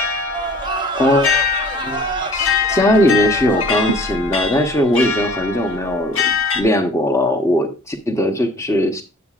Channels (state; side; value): normal; both; correlation 0.50